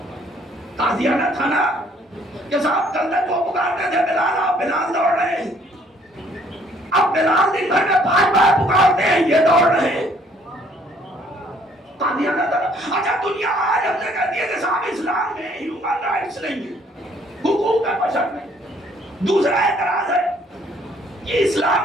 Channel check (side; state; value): both; normal; correlation 0.62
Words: تازیانہ تھا نا. کہ صاحب کل تک وہ پکارتے تھے بلال، آپ بلال دوڑ رہے ہیں. اب بلال دن بھر میں 5 بار پکارتے ہیں، یہ دوڑ رہے ہیں. تازیانہ تھا. اچھا دنیا آج ہم نے کہہ دیا کہ صاحب اسلام میں ہیومن رائٹس نہیں ہے، حقوق بشر نہیں. دوسرا اعتراض ہے کہ